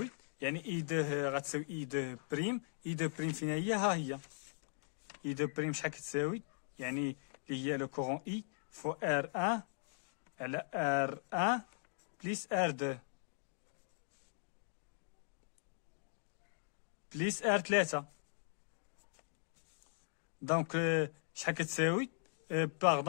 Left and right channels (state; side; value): silent; right; digital silence